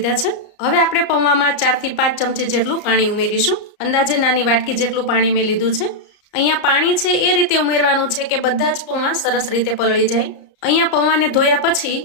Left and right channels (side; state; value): right; late; 34 ms